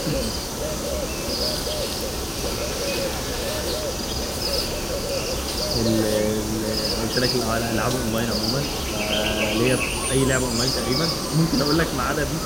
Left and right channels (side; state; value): both; identical; correlation 1.00